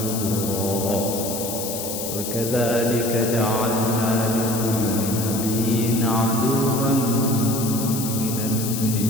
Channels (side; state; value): left; noise; hiss, 6 dB below the sound